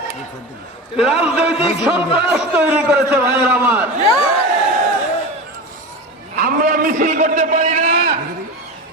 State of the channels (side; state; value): both; normal; correlation 0.26